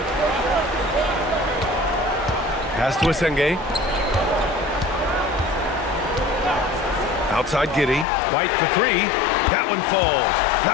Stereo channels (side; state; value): right; drops out; at 8.1 s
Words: Pass to Asenge. Outside Giddey. White for 3. That one falls.